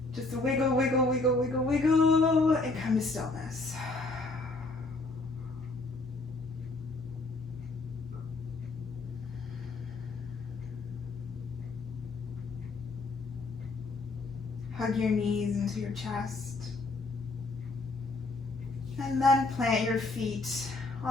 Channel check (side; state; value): right; quieter; 3.3 dB